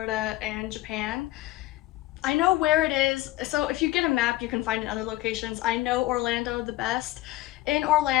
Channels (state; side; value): quieter; right; 16.8 dB